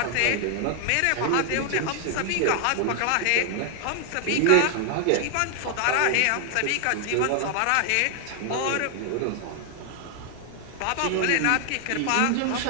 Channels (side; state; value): both; different; correlation 0.00